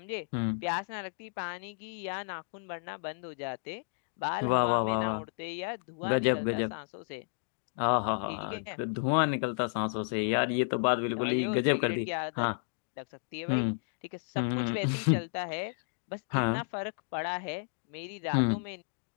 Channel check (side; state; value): right; silent; digital silence